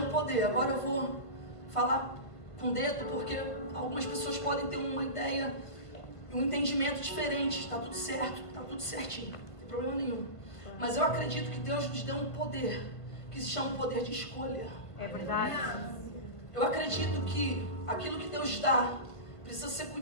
poder. Agora eu vou falar com o dedo porque algumas pessoas podem ter uma ideia, um entendimento diferente. Está tudo certo, está tudo certinho, não tem problema nenhum. Mas eu acredito que Deus nos deu um poder que se chama poder de escolha. É verdade. Eu acredito que aquilo que Deus dá precisa ser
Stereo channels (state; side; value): late; right; 1.6 ms